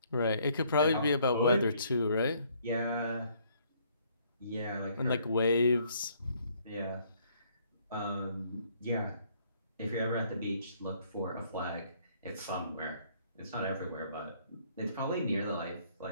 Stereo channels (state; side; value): inverted; both; correlation -0.64